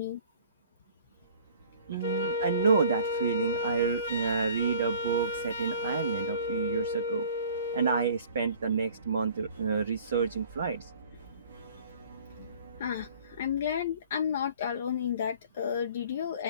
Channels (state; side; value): inverted; both; correlation -0.50